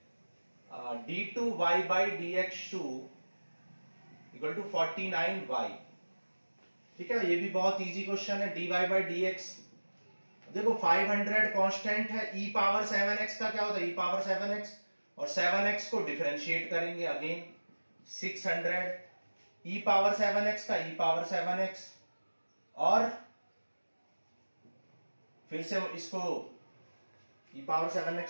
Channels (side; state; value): both; inverted; correlation -1.00